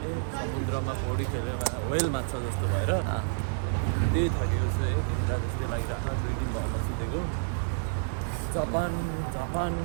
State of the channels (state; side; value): silent; left; digital silence